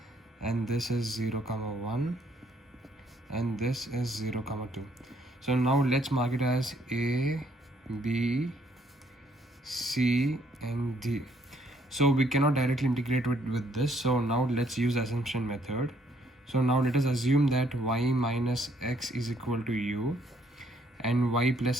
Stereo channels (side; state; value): both; normal; correlation 0.68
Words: and this is 0 comma 1 and this is 0 comma 2. So now let's mark it as A, B, C and D. So we cannot directly integrate with this. So now let's use assumption method. So now let us assume that y minus x is equal to u and y